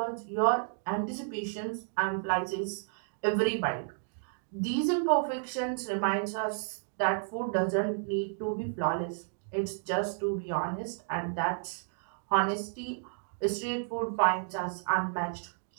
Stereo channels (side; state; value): left; silent; digital silence